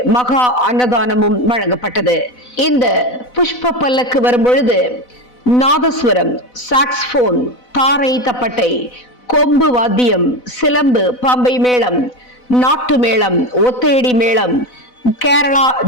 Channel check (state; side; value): late; right; 4.0 ms